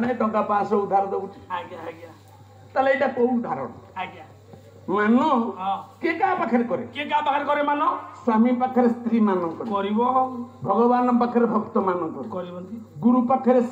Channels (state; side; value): identical; both; correlation 1.00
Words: ନାହିଁ ଟଙ୍କା 500 ଉଧାର ଦଉଛି ଆଜ୍ଞା ଆଜ୍ଞା ତାହେଲେ ଏଇଟା କୋଉ ଉଦାହରଣ ଆଜ୍ଞା ମାନ ହଁ କିଏ କାହା ପାଖରେ କରେ କିଏ କାହା ପାଖରେ କରେ ମାନ ସ୍ୱାମୀ ପାଖରେ ସ୍ତ୍ରୀ ମାନଙ୍କ କରିବ ଭଗବାନ ପାଖରେ ଭକ୍ତ ମାନଙ୍କ କରିବନ୍ତି ଗୁରୁ ପାଖରେ